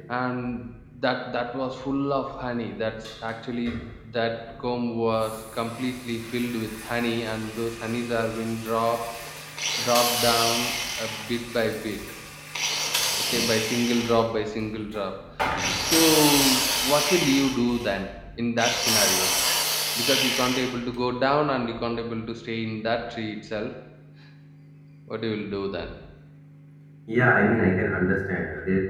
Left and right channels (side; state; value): both; identical; correlation 1.00